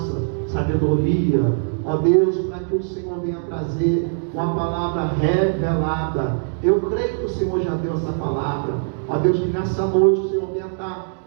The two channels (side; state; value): left; silent; digital silence